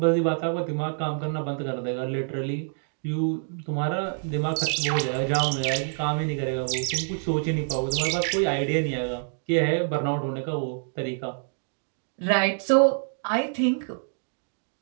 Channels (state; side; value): silent; left; digital silence